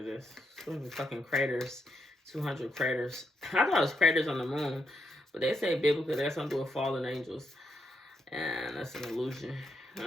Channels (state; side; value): normal; both; correlation 0.80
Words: is. Some fucking craters. 200 craters. I thought it was craters on the moon. But they say biblically that's something to do with fallen angels. And that's an illusion.